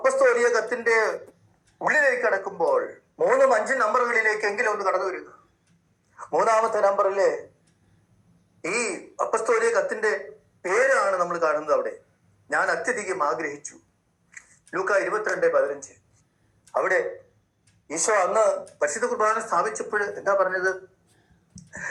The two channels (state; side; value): identical; both; correlation 1.00